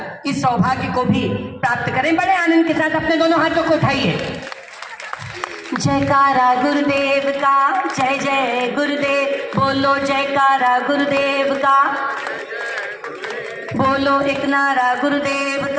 इस सौभाग्य को भी प्राप्त करें। बड़े आनंद के साथ अपने दोनों हाथों को उठाइए। जयकारा गुरुदेव का, जय जय गुरुदेव, बोलो जयकारा गुरुदेव का, बोलो एक नारा गुरुदेव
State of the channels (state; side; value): identical; both; correlation 1.00